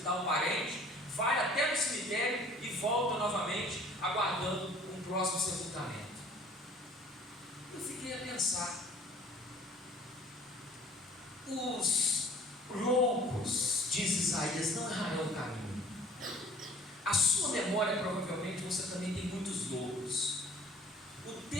um parente, vai até no cemitério e volta novamente, aguardando um próximo sepultamento. Eu fiquei a pensar: os loucos, diz Isaías, não errarão o caminho. A sua memória, provavelmente, você também tem muitos loucos. O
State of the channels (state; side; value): normal; both; correlation 0.51